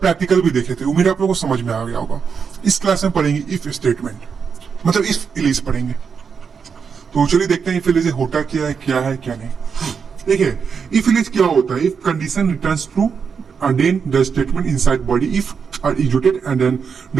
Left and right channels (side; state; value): left; quieter; 6.2 dB